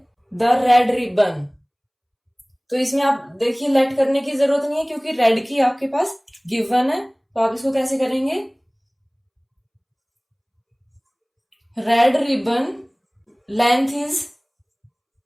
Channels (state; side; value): identical; both; correlation 1.00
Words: द रेड रिबन. तो इसमें आप देखिए लेट करने की जरूरत नहीं है क्योंकि रेड की आपके पास गिवन है. तो आप इसको कैसे करेंगे, red ribbon length is